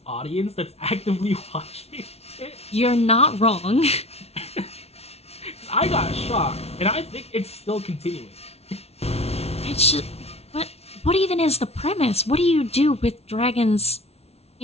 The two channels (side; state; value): right; late; 0.30 ms